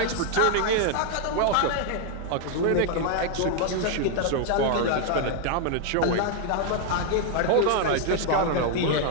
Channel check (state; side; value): different; both; correlation 0.00